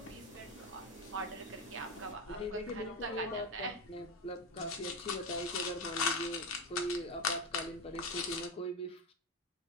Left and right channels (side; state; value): both; normal; correlation 0.15